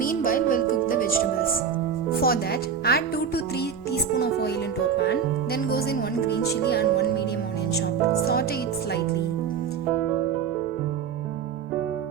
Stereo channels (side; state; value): left; quieter; 7.1 dB